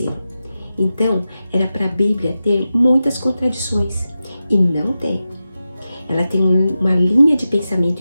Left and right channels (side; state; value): both; inverted; correlation -0.92